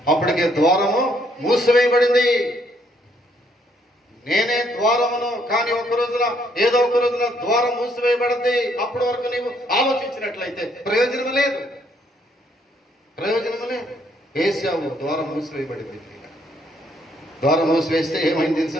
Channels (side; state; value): both; normal; correlation 0.69